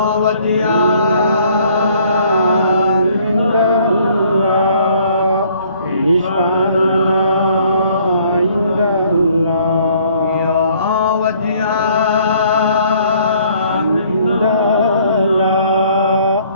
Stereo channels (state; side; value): inverted; both; correlation -0.61